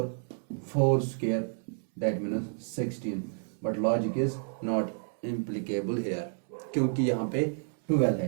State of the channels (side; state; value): left; silent; 58 dB below the other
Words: 4 square that means 16, but logic is not implicable here, क्योंकि यहाँ पे 12